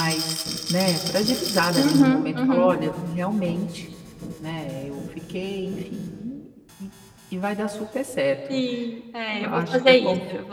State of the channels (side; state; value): both; identical; correlation 1.00